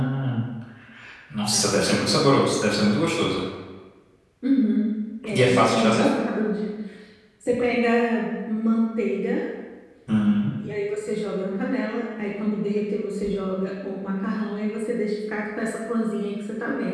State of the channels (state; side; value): identical; both; correlation 1.00